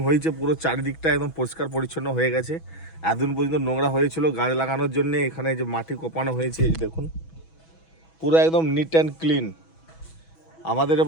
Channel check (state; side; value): late; right; 6.1 ms